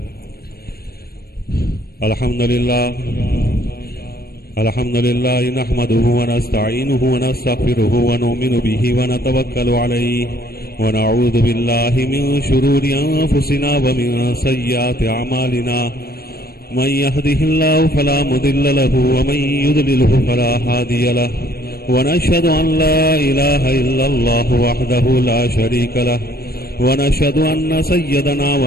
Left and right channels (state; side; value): late; right; 0.45 ms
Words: الحمد لله الحمد لله نحمده ونستعينه ونستغفره ونؤمن به ونتوكل عليه ونعوذ بالله من شرور أنفسنا ومن سيئات أعمالنا. من يهده الله فلا مضل له ومن يضلله فلا هادي له. ونشهد أن لا إله إلا الله وحده لا شريك له ونشهد أن سيدنا